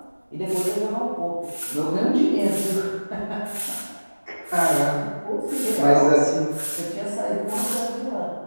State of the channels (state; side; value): inverted; both; correlation -1.00